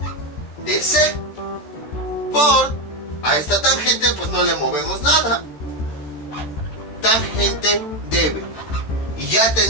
de C. Por a esta tangente pues no le movemos nada. Tangente de B. Y ya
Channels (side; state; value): right; late; 14 ms